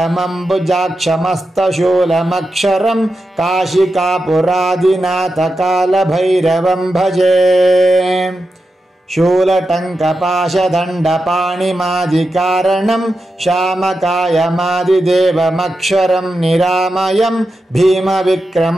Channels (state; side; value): normal; both; correlation 0.89